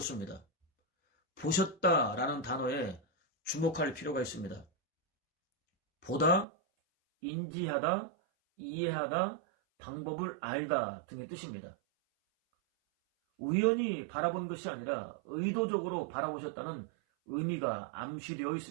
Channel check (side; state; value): left; drops out; at 6.5 s